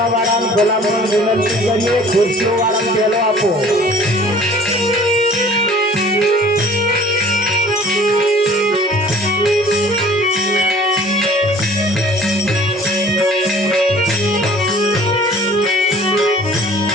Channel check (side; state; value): both; normal; correlation 0.50